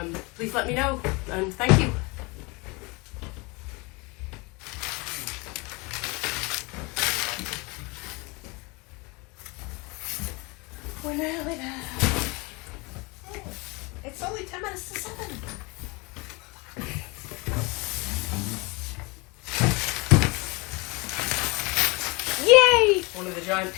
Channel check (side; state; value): right; quieter; 27.2 dB